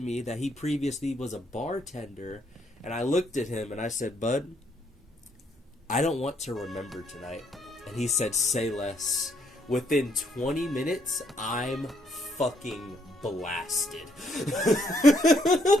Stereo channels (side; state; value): both; normal; correlation 0.71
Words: that he previously was a bartender. And I looked at him and I said, bud, I don't want to remember tonight. And he said, say less. Within 20 minutes, I'm fucking blasted.